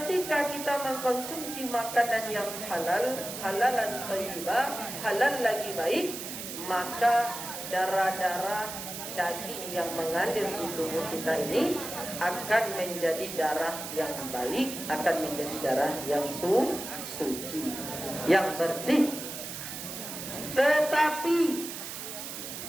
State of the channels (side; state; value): right; noise; hiss, 8 dB below the sound